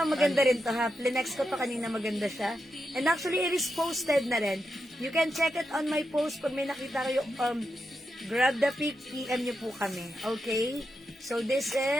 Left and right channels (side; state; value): both; normal; correlation 0.87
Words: maganda rin to, ha? Plinex ko to kanina, maganda siya. And actually, it is posted na rin. You can check it on my post. Pag may nakita kayo, grab the pic, PM nyo po kami. Okay? So, this